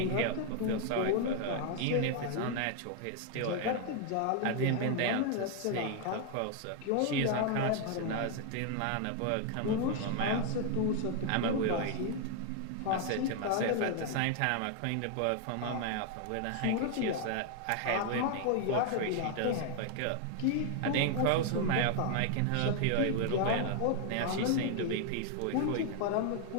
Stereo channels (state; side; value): different; both; correlation 0.00